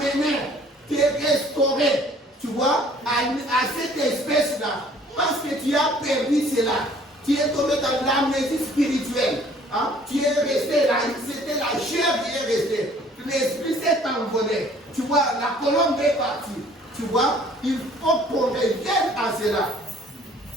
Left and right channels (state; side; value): normal; both; correlation 0.55